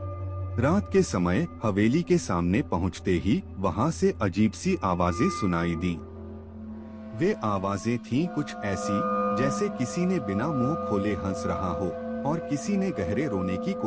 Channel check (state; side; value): identical; both; correlation 1.00